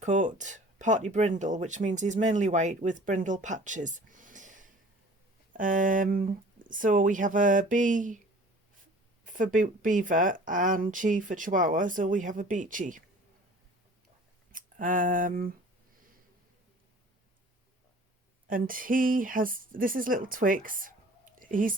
coat party brindle, which means he's mainly white with brindle patches. So we have a B for beaver and Chi for Chihuahua, so we have a Biechi. And this is little Twix. He's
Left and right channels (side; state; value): both; normal; correlation 0.47